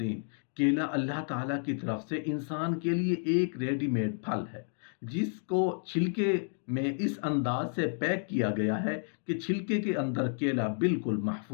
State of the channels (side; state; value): right; silent; 57 dB below the other